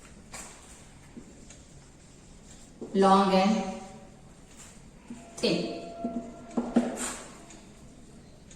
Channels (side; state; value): both; identical; correlation 1.00